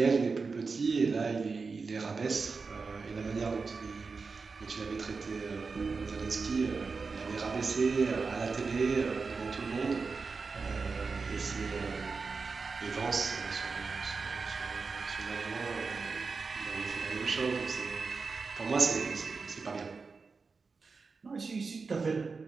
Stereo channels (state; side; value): quieter; left; 4.6 dB